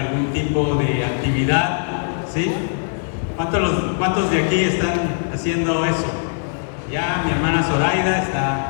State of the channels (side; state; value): right; silent; digital silence